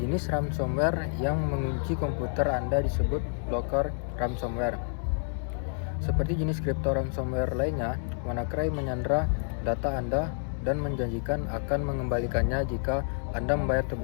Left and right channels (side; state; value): right; silent; 59 dB below the other